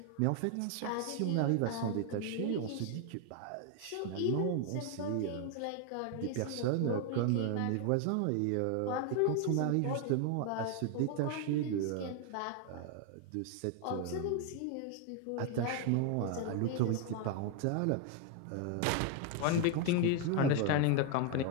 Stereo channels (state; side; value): different; both; correlation 0.01